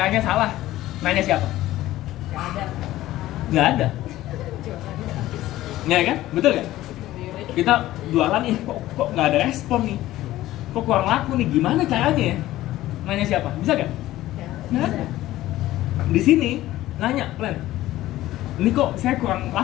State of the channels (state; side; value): quieter; right; 15.4 dB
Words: salah, nanya siapa? Nggak ada, ya kan, betul kan? Kita jualan nih, kok nggak ada respon nih, kok kurang laku nih, gimana caranya ya? Nanya siapa? Bisa gak? Nggak ada. Di sini nanya plan, ini kok saya kurang